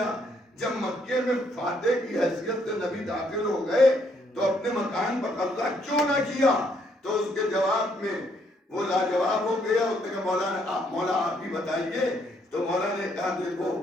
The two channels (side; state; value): both; normal; correlation 0.71